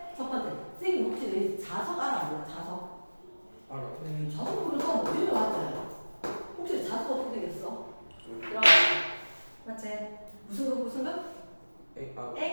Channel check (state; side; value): inverted; both; correlation -1.00